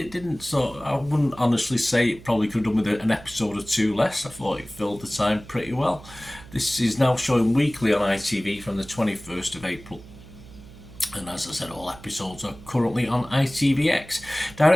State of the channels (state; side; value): noise; right; hum, 19 dB below the sound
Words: didn't I wouldn't honestly say it probably could have done with an episode or 2 less. I thought it filled the time pretty well. This is now showing weekly on ITV from the 21st of April. And as I said, all episodes are currently on ITVX.